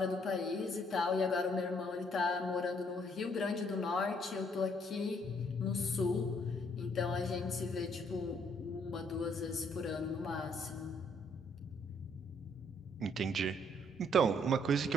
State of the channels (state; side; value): normal; both; correlation 0.67